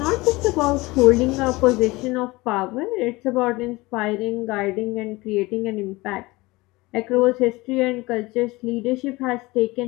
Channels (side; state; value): right; quieter; 21.7 dB